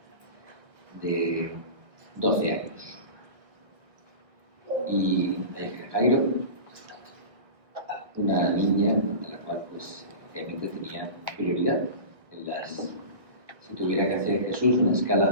de 12 años. Y Jairo, una niña de la cual pues obviamente tenía prioridad en las... Si tuviera que hacer Jesús una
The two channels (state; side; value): late; left; 1.3 ms